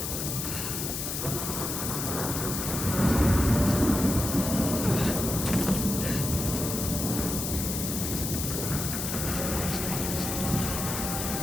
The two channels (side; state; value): left; noise; hiss, 3 dB below the sound